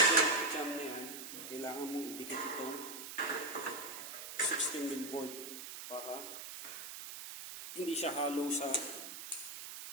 jam na yan, kailangan mong idikit itong 16mm board para hindi siya hollow sa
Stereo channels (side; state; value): right; noise; hiss, 9 dB below the sound